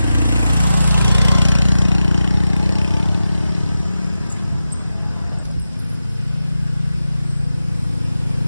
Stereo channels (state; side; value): inverted; both; correlation -0.92